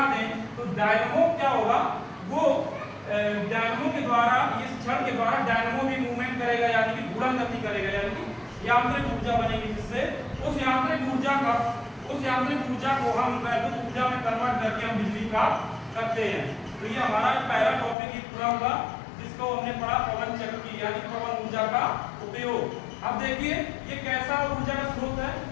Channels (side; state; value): right; drops out; at 17.9 s